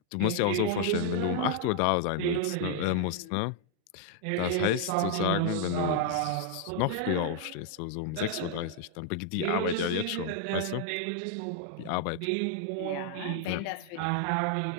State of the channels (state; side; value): different; both; correlation 0.00